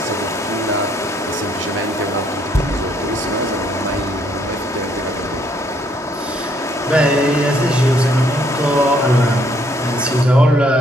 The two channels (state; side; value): normal; both; correlation 0.67